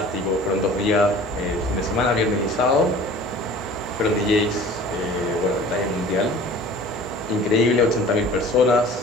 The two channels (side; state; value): both; normal; correlation 0.44